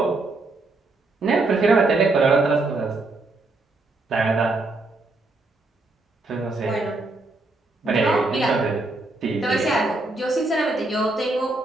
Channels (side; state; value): left; quieter; 3.1 dB